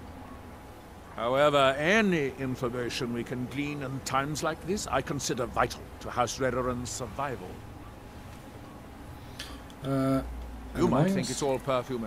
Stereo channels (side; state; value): both; identical; correlation 1.00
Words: However, any information we can glean in times like this, I consider vital to House Redoran's survival. You might think it's all perfume